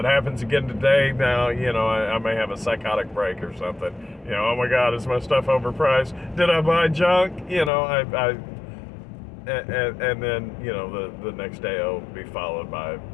happens again today, now, I may have a psychotic break or something. Oh my God, is my stuff overpriced? Did I buy junk? And then, the next day it'll be followed by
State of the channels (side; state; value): right; drops out; at 7.7 s